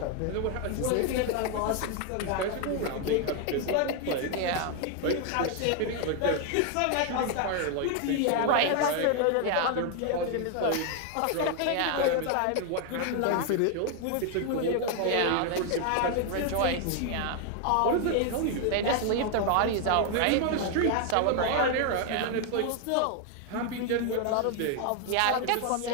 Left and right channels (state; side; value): different; both; correlation 0.01